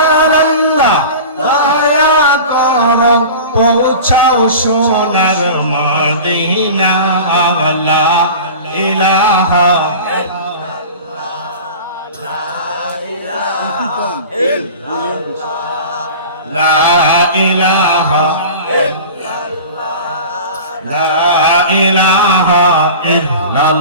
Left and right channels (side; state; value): both; inverted; correlation -0.36